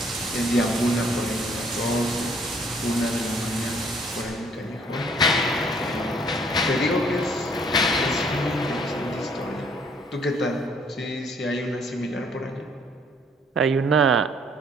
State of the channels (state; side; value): normal; both; correlation 0.62